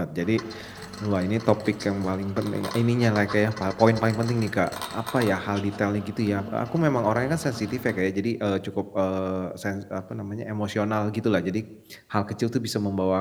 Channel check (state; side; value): identical; both; correlation 1.00